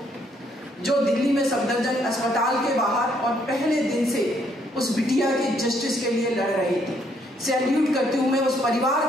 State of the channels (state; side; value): normal; both; correlation 0.70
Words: जो दिल्ली में सफदरजंग अस्पताल के बाहर और पहले दिन से उस बिटिया के जस्टिस के लिए लड़ रही थी। सैल्यूट करती हूँ मैं उस परिवार